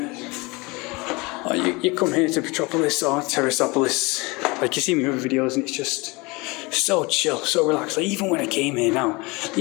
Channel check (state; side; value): quieter; right; 25.4 dB